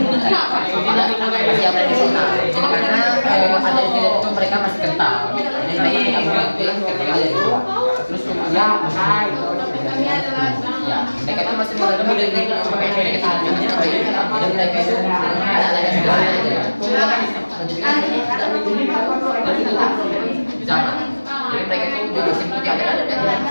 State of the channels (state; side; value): inverted; both; correlation -1.00